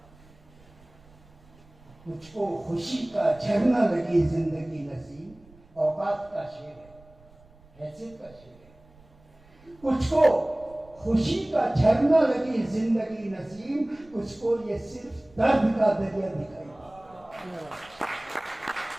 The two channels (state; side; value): noise; right; rumble, 27 dB below the sound